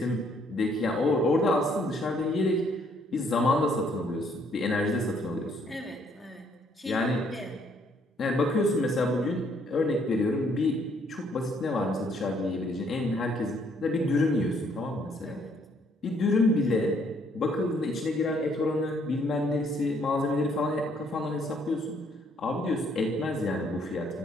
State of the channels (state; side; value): normal; both; correlation 0.67